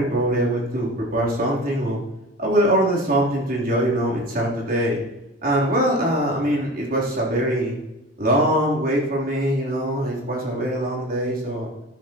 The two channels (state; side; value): normal; both; correlation 0.35